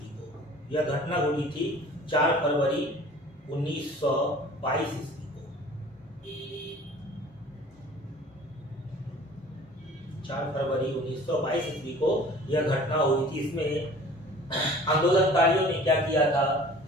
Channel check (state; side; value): normal; both; correlation 0.47